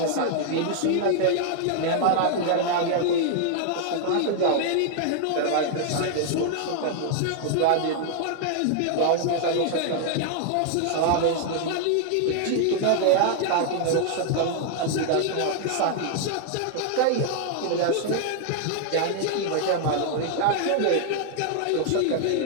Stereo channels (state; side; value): different; both; correlation 0.00